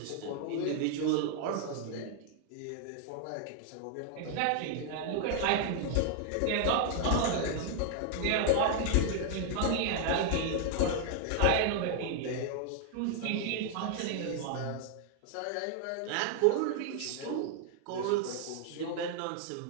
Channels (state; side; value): different; both; correlation 0.00